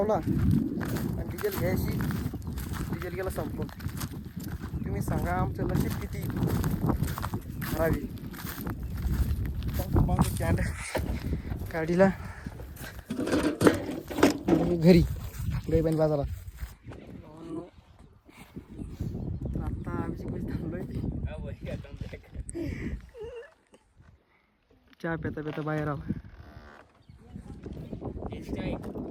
आणि डिझेल घ्यायची. डिझेल गेला संपून. तुम्ही सांगा आमचं नशीब किती खराबी. कॅन गाडीला घरी गाईबाई बाजारात. चहा पेता पेता बाहेर आला.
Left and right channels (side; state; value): both; identical; correlation 1.00